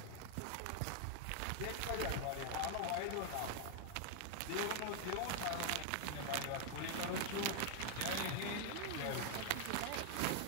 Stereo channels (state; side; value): different; both; correlation 0.00